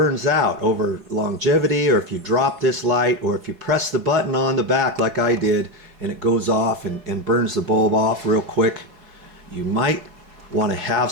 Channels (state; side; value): late; left; 4.7 ms